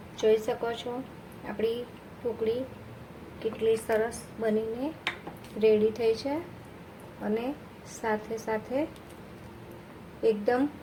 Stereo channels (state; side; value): identical; both; correlation 1.00